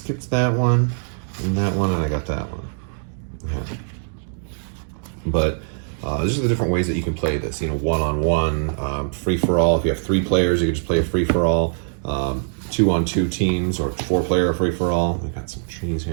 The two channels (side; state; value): left; silent; digital silence